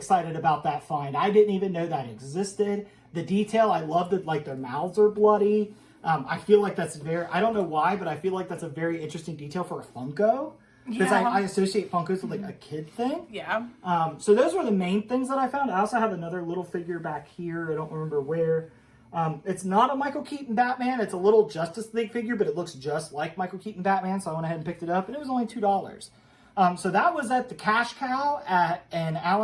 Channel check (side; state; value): both; identical; correlation 1.00